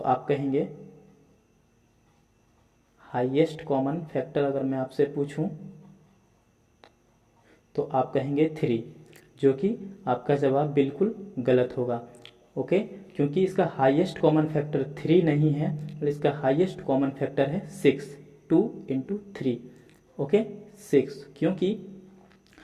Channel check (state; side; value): identical; both; correlation 1.00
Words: कहेंगे हाईएस्ट कॉमन फैक्टर, अगर मैं आपसे पूछूं तो आप कहेंगे 3, जो कि आपका जवाब बिल्कुल गलत होगा। ओके, क्योंकि इसका हाईएस्ट कॉमन फैक्टर 3 नहीं है, और इसका हाईएस्ट कॉमन फैक्टर है 6, 2 इंटू 3। ओके, 6,